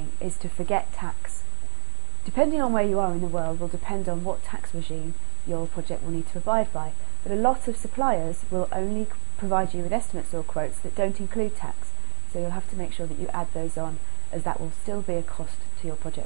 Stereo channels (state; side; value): silent; left; digital silence